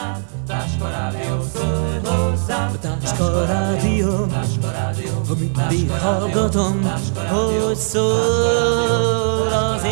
Táska rádió, ha mindig hallgatom, hogy szól az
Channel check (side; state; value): left; silent; digital silence